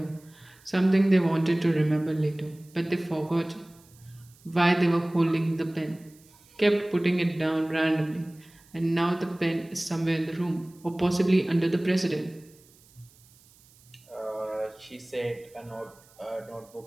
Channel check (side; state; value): right; noise; hiss, 28 dB below the sound